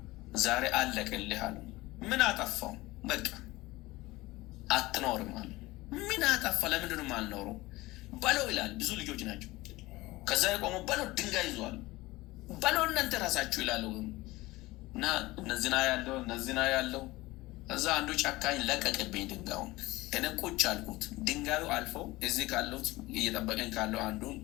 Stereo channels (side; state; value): right; quieter; 19.8 dB